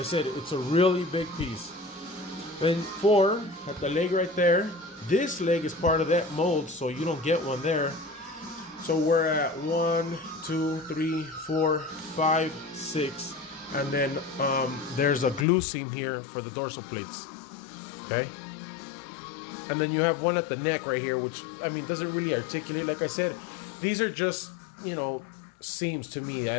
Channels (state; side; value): drops out; right; at 15.5 s